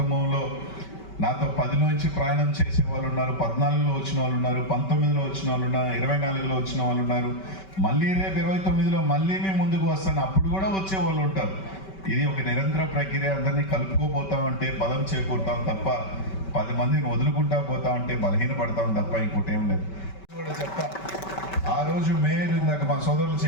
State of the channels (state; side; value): late; right; 5.2 ms